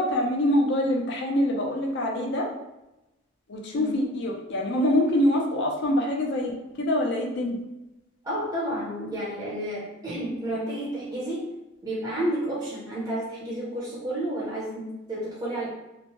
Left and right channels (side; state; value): both; normal; correlation 0.44